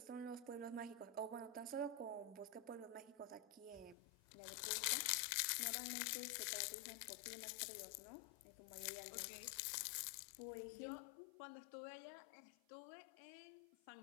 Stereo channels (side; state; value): right; drops out; at 4.0 s